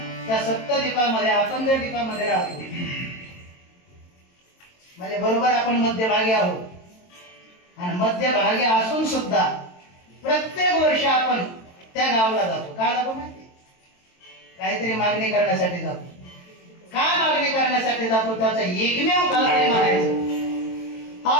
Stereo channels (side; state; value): right; late; 22 ms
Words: त्या सप्तद्वीपामध्ये आपण जर द्वीपामध्ये राहतो म्हणजे बरोबर आपण मध्यभागी आहोत. आणि मध्यभागी असून सुद्धा प्रत्येक वर्षी आपण त्या गावाला जातो. का जातो माहिती? काहीतरी मागणी करण्यासाठी जातो. का मागणी करण्यासाठी जातो? त्याचं एकमेव कारण म्हणायचं,